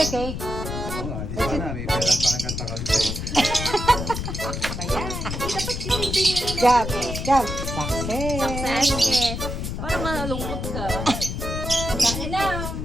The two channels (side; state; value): left; noise; rumble, 4 dB below the sound